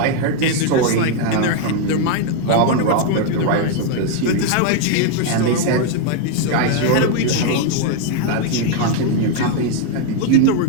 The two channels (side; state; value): both; different; correlation 0.00